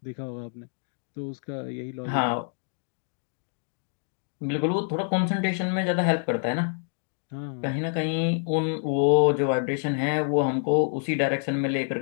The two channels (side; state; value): right; silent; digital silence